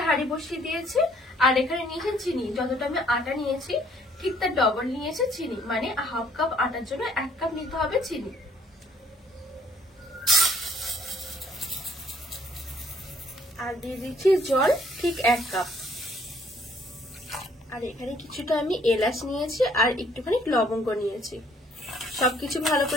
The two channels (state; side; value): normal; both; correlation 0.62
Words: হাঁড়ি বসিয়ে দিয়েছি, আর এখানে নিয়েছি চিনি। যতটা আমি আটা নিয়েছি ঠিক তার ডবল নিয়েছে চিনি, মানে হাফ কাপ আটার জন্য 1 কাপ নিতে হবে চিনি। আর দিয়ে দিচ্ছি জল ঠিক 1 কাপ। আর এখানে কিছুটা আমি এলাচ নিয়েছি আর একটুখানি লবঙ্গ নিয়েছি। সবকিছু ভালো